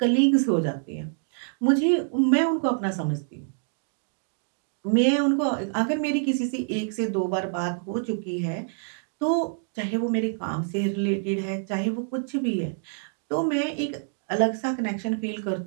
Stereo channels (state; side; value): silent; left; digital silence